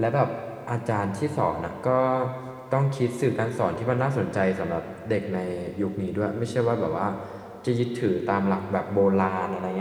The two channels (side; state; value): both; identical; correlation 1.00